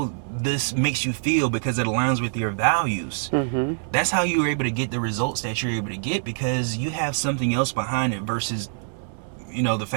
this makes you feel because it aligns with your values. Mm-hmm. That's how you're able to get the results that you're able to get, because you have something else behind it versus the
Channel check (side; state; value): left; silent; digital silence